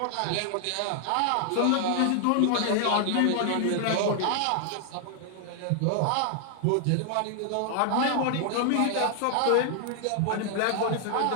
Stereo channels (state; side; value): different; both; correlation 0.00